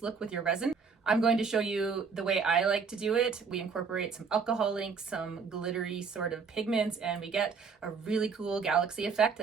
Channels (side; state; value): left; quieter; 5.4 dB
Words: look with your resin. I'm going to show you the way I like to do it. We incorporate some alcohol inks, some glittery sort of pigments, and we get a really cool galaxy effect